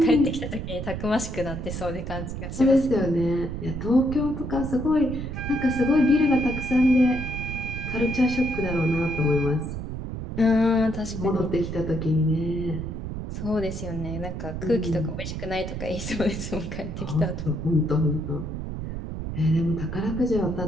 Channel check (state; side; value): noise; right; rumble, 6 dB below the sound